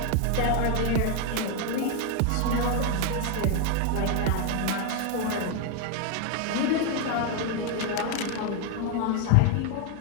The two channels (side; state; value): both; different; correlation 0.01